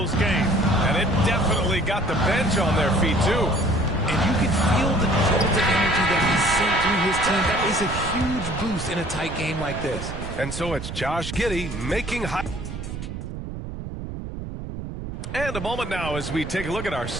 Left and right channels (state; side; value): noise; right; rumble, 7 dB below the sound